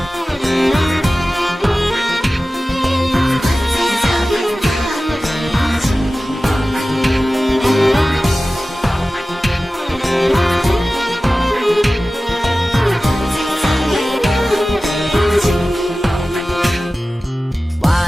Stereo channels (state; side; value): normal; both; correlation 0.96